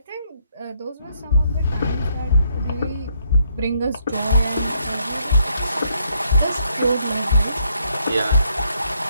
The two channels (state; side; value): inverted; both; correlation -0.73